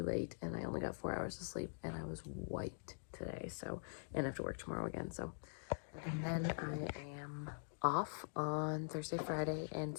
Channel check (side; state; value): right; silent; digital silence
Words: late and I only got 4 hours of sleep and I was wiped today. So, and I have to work tomorrow again. So, and then I am off on Thursday, Friday, and